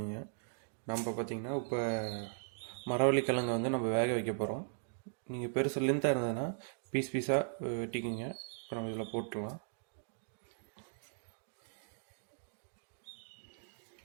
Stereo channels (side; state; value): left; silent; digital silence